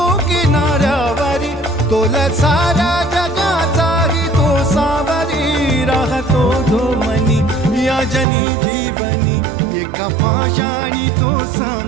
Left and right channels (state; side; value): drops out; left; at 8.2 s